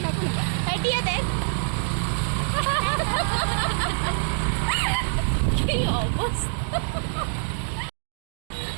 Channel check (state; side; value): silent; left; digital silence